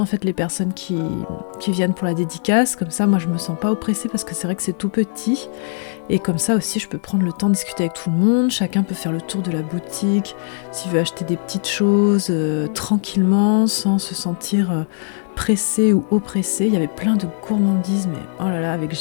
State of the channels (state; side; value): silent; right; digital silence